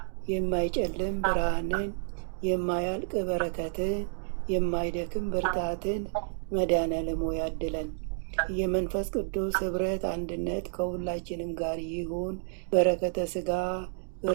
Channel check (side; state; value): left; silent; digital silence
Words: የማይጨልም ብርሃንን፣ የማያልቅ በረከትን፣ የማይደክም ብርታትን መድኃኔዓለም ሆይ ያድለን። የመንፈስ ቅዱስ ኅብረት አንድነት ከሁላችንም ጋር ይሁን። በረከተ ሥጋ